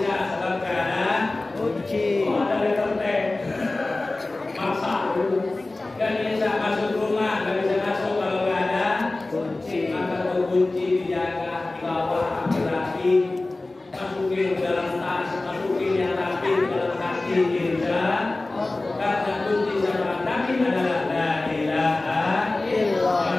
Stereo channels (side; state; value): right; quieter; 3.0 dB